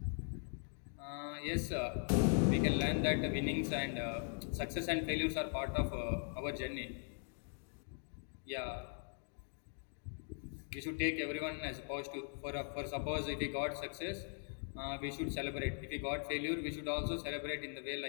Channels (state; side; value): silent; right; 51 dB below the other